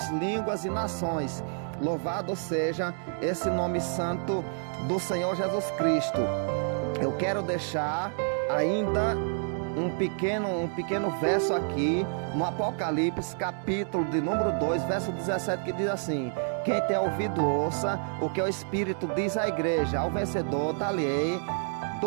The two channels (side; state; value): left; silent; 59 dB below the other